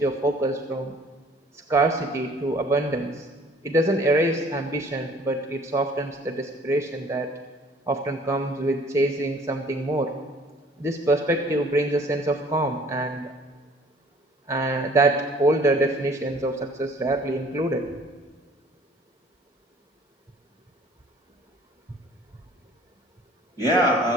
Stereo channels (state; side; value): normal; both; correlation 0.54